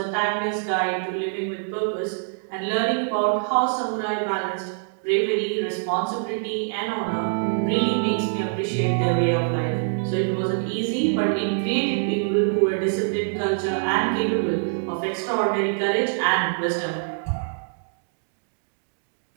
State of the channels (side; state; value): left; silent; digital silence